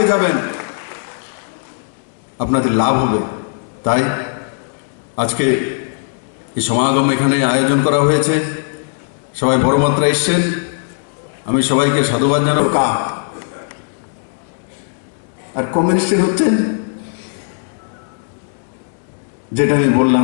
যাবেন আপনাদের লাভ হবে তাই আজকে এই সমাগম এখানে আয়োজন করা হয়েছে সবাই বড় মাত্রায় এসছেন আমি সবাইকে সাধুবাদ জানাবো আর কমিউনিস্টের হচ্ছেন যেটা আমি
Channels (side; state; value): right; silent; digital silence